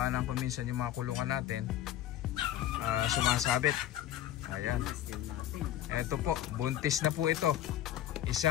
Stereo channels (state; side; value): quieter; right; 12.2 dB